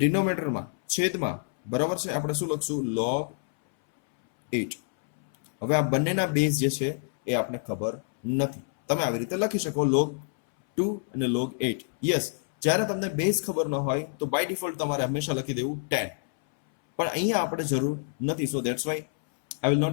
છેદમાં બરાબર છે આપણે શું લખશું? log 8. હવે આ બંનેના બેઝ જે છે એ આપણે ખબર નથી. તમે આવી રીતે લખી શકો log 2 અને log 8. યસ, જ્યારે તમને બેઝ ખબર ન હોય તો બાય ડિફોલ્ટ તમારે હંમેશા લખી દેવું 10, પણ અહીંયા આપણે જરૂર નથી. So that's why I will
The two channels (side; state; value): right; silent; 60 dB below the other